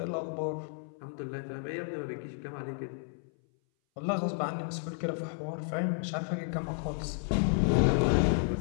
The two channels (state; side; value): silent; right; 56 dB below the other